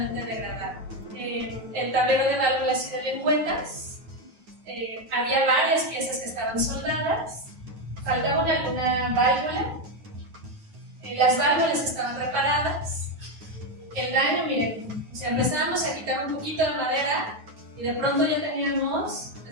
degradada. El tablero de válvulas y de lengüetas, había varias piezas que estaban soldadas, faltaba una válvula, las válvulas estaban reparadas. El daño, miren, o sea, empezábamos a quitar un poquito de madera y de pronto ya teníamos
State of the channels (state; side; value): late; left; 9.3 ms